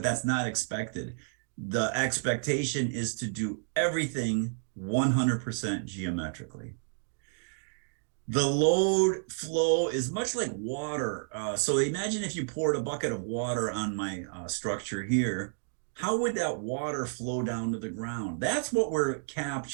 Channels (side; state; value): left; silent; digital silence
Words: that's not expected. The expectation is to do everything 100% geometrically. The load flow is much like water. So imagine if you poured a bucket of water on my structure here, how would that water flow down to the ground? That's what we're